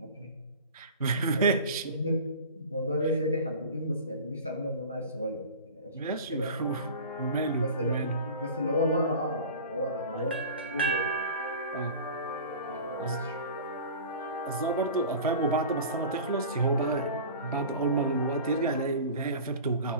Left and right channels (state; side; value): inverted; both; correlation -0.37